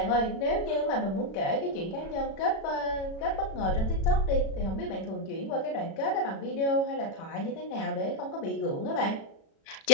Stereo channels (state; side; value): late; right; 36 ms